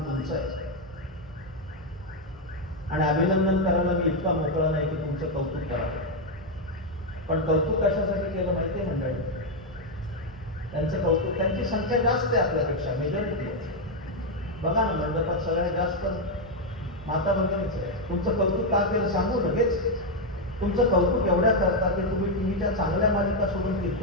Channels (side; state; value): both; normal; correlation 0.02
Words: तुमचं आहे. आणि अभिनंदन करायला मी इतका मोकळा नाही की तुमचं कौतुक करावं. पण कौतुक कशासाठी केलं माहिती आहे मंडळी? त्यांचं कौतुक, त्यांची संख्या जास्त आहे आपल्यापेक्षा, मेजॉरिटी आहे. बघा ना मंडपात सगळ्यात जास्त माता भगिनीच आहे. तुमचं कौतुक का केलं सांगू लगेच. तुमचं कौतुक एवढ्या करता की तुम्ही टीव्हीच्या चांगल्या मालिका सोडून